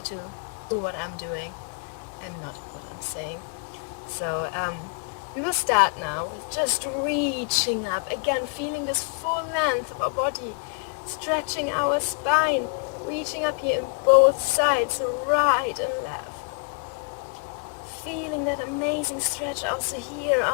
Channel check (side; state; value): right; quieter; 34.5 dB